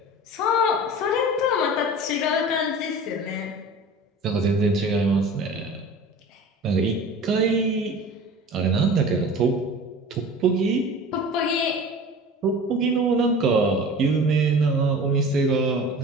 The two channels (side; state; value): both; normal; correlation 0.38